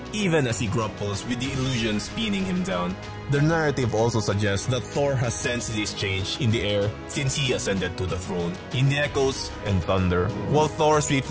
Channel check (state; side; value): identical; both; correlation 1.00